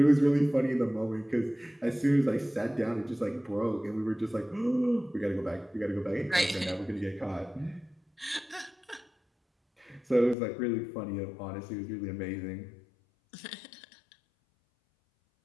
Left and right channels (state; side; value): drops out; right; at 10.4 s